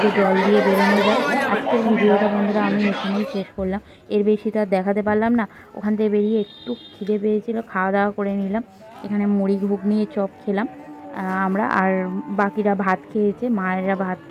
জল দিয়ে বেরোনো যায়। আজকের ভিডিওটা বন্ধুরা আমি এখানেই শেষ করলাম, এর বেশি তো আর দেখাতে পারলাম না। ওখান থেকে বেরিয়ে একটু খিদে পেয়েছিল, খাওয়া দাওয়া করে নিলাম, এখানে মুড়ি ঘুগনি চপ খেলাম আমরা, আর বাকিরা ভাত খেয়েছে, মায়েরা ভাত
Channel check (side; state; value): both; identical; correlation 1.00